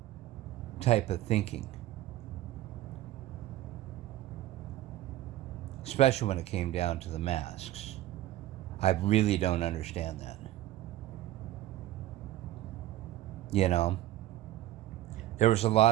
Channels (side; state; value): left; quieter; 14.5 dB